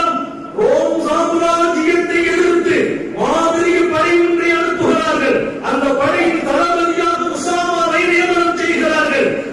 ரோம் சாம்ராஜ்யத்தை எதிர்த்து மாபெரிய படை ஒன்றை அனுப்புகிறார்கள். அந்த படையின் தளபதியாக உசாமாவை நியமனம் செய்கிறார்கள்.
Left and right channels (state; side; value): identical; both; correlation 1.00